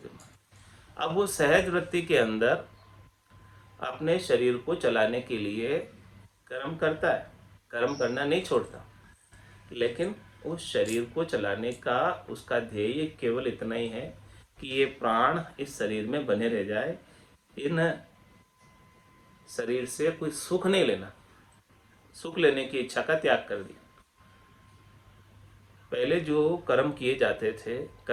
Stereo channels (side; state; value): both; identical; correlation 1.00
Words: अब वो सहज वृत्ति के अंदर अपने शरीर को चलाने के लिए कर्म करता है, कर्म करना नहीं छोड़ता, लेकिन उस शरीर को चलाने का उसका ध्येय केवल इतना ही है कि ये प्राण इस शरीर में बने रह जाए, इन शरीर से कोई सुख नहीं लेना, सुख लेने की इच्छा का त्याग कर दिया। पहले जो कर्म किए जाते थे,